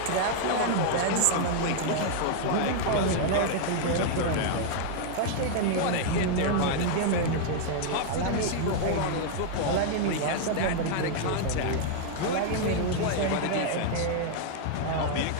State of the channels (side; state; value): both; different; correlation -0.01